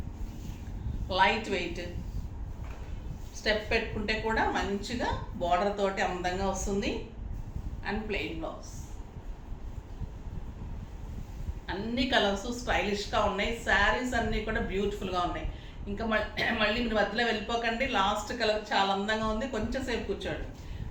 light weight. Step పెట్టుకుంటే కూడా మంచిగా బార్డర్ తోటి అందంగా వస్తుంది. And plain blouse. అన్ని కలర్స్ స్టైలిష్గా ఉన్నాయి. శారీస్ అన్నీ కూడా బ్యూటిఫుల్గా ఉన్నాయి. ఇంకా మళ్ళీ మీరు మధ్యలో వెళ్ళిపోకండి, లాస్ట్ కలర్ చాలా అందంగా ఉంది. కొంచెం సేపు కూర్చోండి.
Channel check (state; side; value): identical; both; correlation 1.00